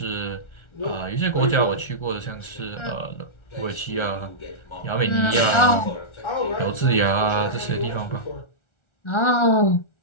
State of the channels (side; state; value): right; late; 1.4 ms